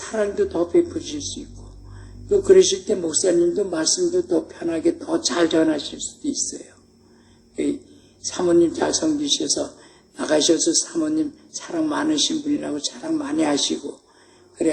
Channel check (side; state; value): both; identical; correlation 1.00